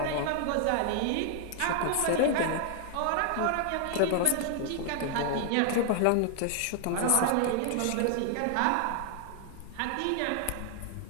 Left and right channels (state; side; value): different; both; correlation 0.00